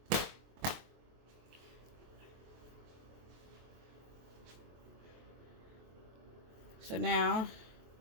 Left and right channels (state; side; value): late; left; 23 ms